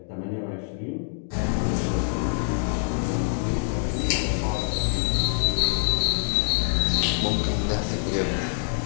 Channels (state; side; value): silent; right; digital silence